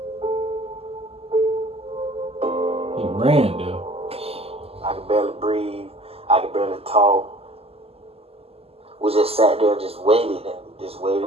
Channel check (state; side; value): late; left; 0.29 ms